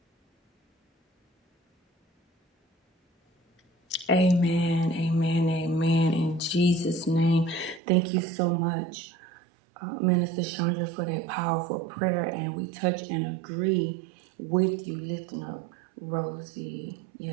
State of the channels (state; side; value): drops out; left; at 7.8 s